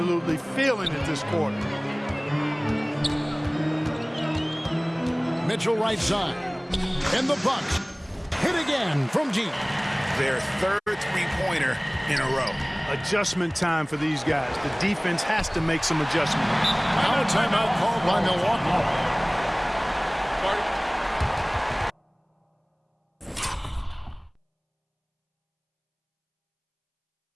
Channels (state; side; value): identical; both; correlation 1.00